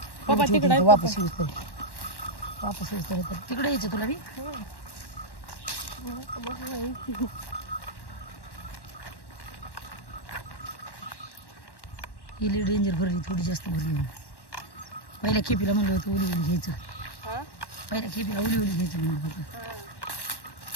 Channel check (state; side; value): late; right; 1.1 ms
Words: पप्पा तिकडे वापस येऊस तर तिकडे यायचं तुला बी हिली डेंजर भरली थोडी जास्त भरली पहिल्या खेपीला म्हणलं होतं उली उली घ्यायचं पहिल्या खेपीला उली उली घ्यायचं म्हणलं होतं